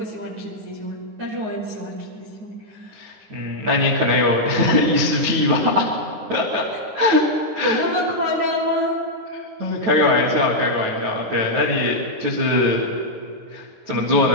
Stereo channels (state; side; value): late; left; 9.3 ms